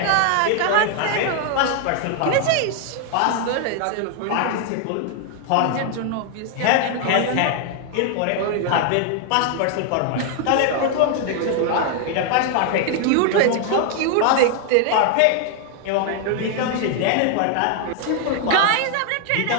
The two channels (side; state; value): both; different; correlation 0.00